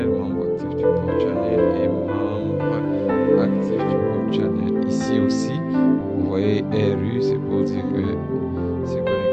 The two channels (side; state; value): both; identical; correlation 1.00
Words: membre actif du port channel et membre actif du port channel. Ici aussi, vous voyez RU, c'est pour dire que c'est